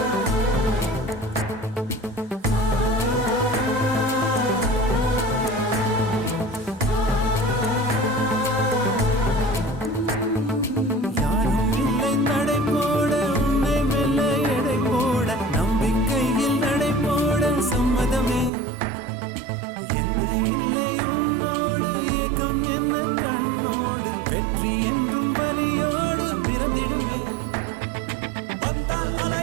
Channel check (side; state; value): left; drops out; at 18.5 s